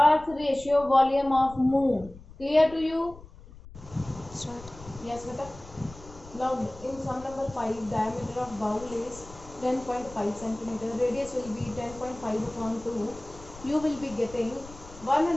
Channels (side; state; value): left; noise; rumble, 18 dB below the sound